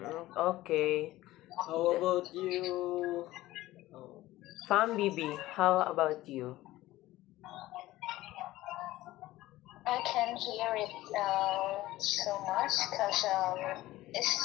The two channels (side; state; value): right; quieter; 16.7 dB